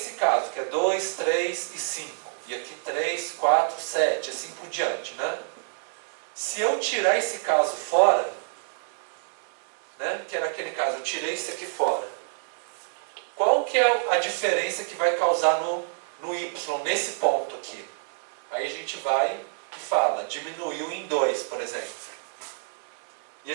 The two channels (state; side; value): silent; left; digital silence